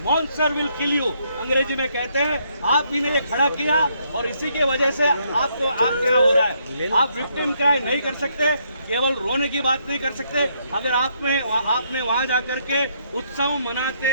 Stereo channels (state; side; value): inverted; both; correlation -0.72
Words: monster will kill you, अंग्रेजी में कहते हैं। आप ही ने ये खड़ा किया और इसी के वजह से आप क्या हो रहा है। आप विक्टिम क्राई नहीं कर सकते, केवल रोने की बात नहीं कर सकते। अगर आपने वहां जाकर के उत्सव